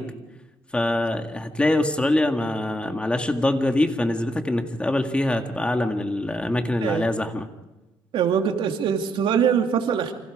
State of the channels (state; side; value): normal; both; correlation 0.77